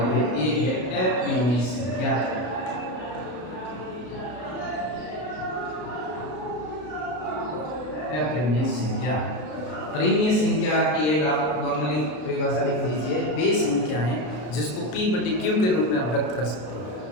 ये है अपरिमेय संख्या। अपरिमेय संख्या, परिमेय संख्या की एक आप नॉर्मली परिभाषा लिख लीजिए, वे संख्याएं जिसको P/Q के रूप में आप व्यक्त कर सकते हैं,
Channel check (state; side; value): late; right; 33 ms